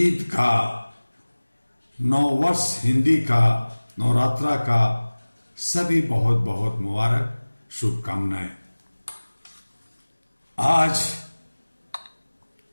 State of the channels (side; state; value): both; inverted; correlation -1.00